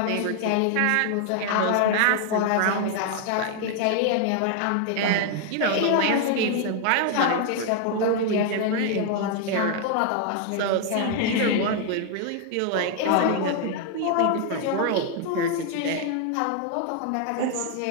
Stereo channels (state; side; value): different; both; correlation 0.00